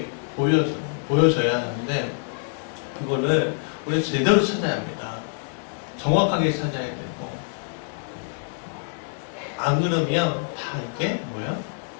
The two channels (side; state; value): right; silent; 59 dB below the other